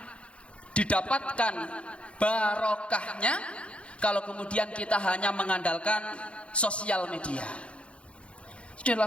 didapatkan barokahnya kalau kemudian kita hanya mengandalkan sosial media. Dalam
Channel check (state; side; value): late; right; 0.060 ms